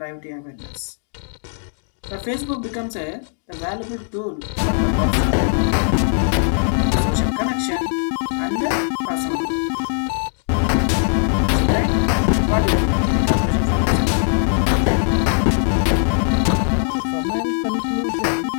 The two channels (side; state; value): right; silent; 66 dB below the other